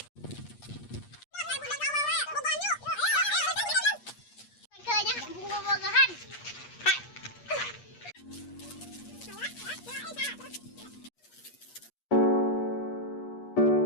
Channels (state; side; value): late; right; 8.4 ms